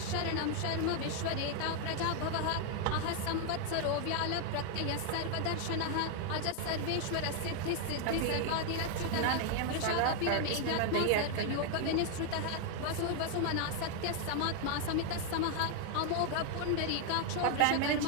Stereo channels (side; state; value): both; different; correlation 0.00